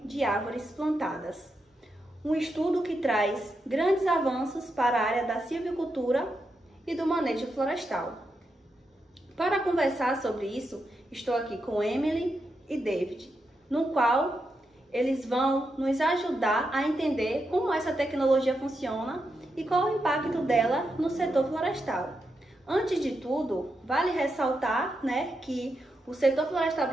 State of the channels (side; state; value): both; normal; correlation 0.85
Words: de árvores plantadas. Um estudo que traz grandes avanços para a área da silvicultura e do manejo florestal. Para conversar sobre isso, estou aqui com Emily e David, no qual eles vão nos ajudar a entender como essa tecnologia funciona e qual o impacto dela no setor florestal. Antes de tudo, vale ressaltar, que o setor florestal